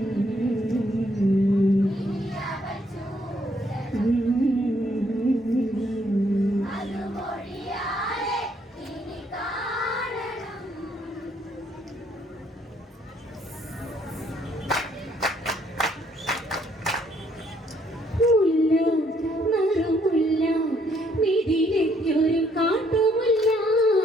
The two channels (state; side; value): normal; both; correlation 0.68